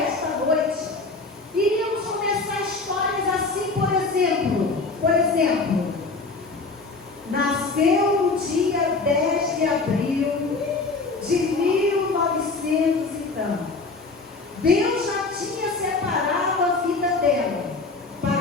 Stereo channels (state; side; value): quieter; right; 3.8 dB